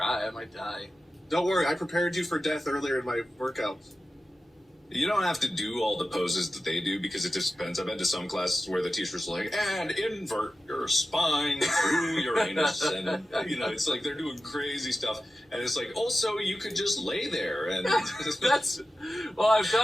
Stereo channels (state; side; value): normal; both; correlation 0.94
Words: I might die. Don't worry, I prepared you for death earlier in my workouts. You don't have to do all the poses that they do because it just depends. I've been to some classes where the teacher's like, and invert your spine through your anus. And, it's like they're doing crazy stuff. And it's like, also, you could just lay there. And I've